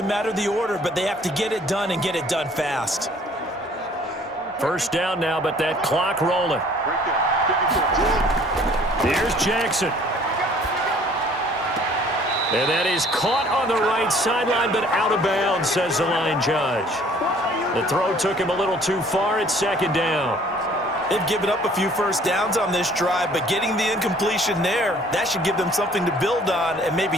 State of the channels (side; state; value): both; normal; correlation 0.55